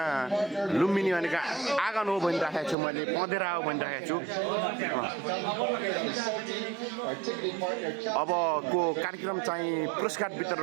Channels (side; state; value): left; drops out; at 2.8 s